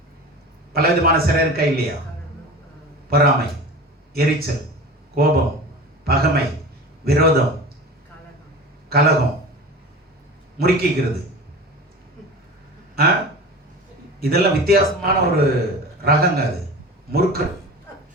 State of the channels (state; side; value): normal; both; correlation 0.34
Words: பல விதமான சிறை இருக்கா இல்லையா? பொறாமை, எரிச்சல், கோபம், பகைமை, விரோதம், கலகம், முறுக்கிக்கிறது. இதெல்லாம் வித்தியாசமான ஒரு ரகங்க. அது முறுக்கு